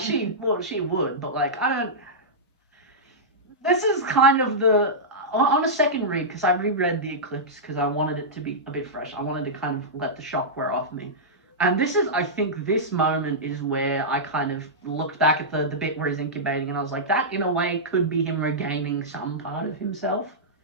She would, but like I don't. This is kind of on a second read, because I reread the Eclipse because I wanted it to be a bit fresh. I wanted to kind of let the shock wear off me. And I think this moment is where I kind of looked back at the bit where he's incubating, and I was like, that in a way could be him regaining some part of himself.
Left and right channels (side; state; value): both; normal; correlation -0.12